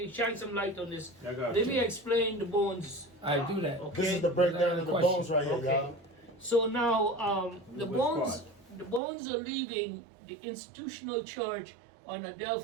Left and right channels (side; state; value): left; drops out; at 9.0 s